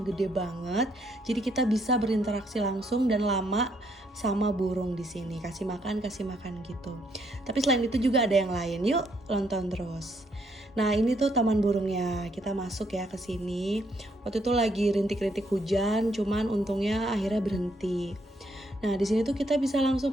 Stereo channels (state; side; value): normal; both; correlation 0.72